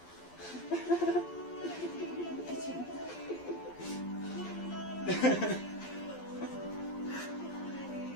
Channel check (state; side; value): late; right; 12 ms